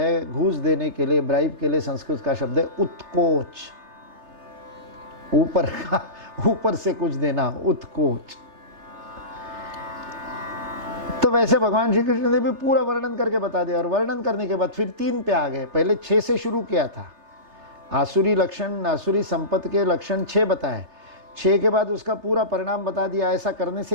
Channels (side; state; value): left; late; 3.3 ms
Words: घूस देने के लिए, ब्राइब के लिए संस्कृत का शब्द है उत्कोच, ऊपर से कुछ देना, उत्कोच। तो वैसे भगवान श्री कृष्ण ने भी पूरा वर्णन करके बता दिया। और वर्णन करने के बाद फिर 3 पे आ गए। पहले 6 से शुरू किया था, आसुरी लक्षण, आसुरी संपत्ति के लक्षण 6 बताए। 6 के बाद उसका पूरा परिणाम बता दिया, ऐसा करने